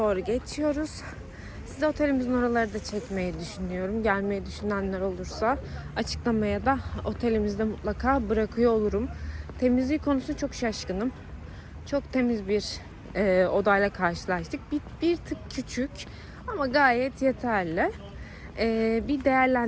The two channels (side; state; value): both; identical; correlation 1.00